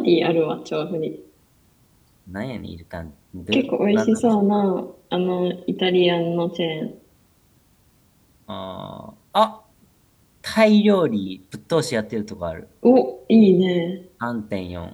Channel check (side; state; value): both; identical; correlation 1.00